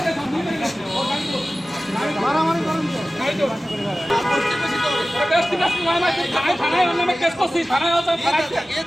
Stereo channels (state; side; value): normal; both; correlation 0.96